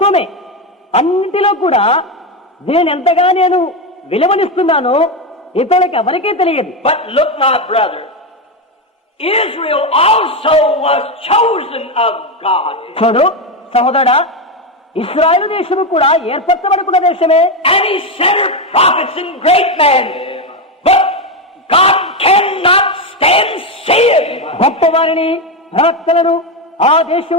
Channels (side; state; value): both; normal; correlation 0.11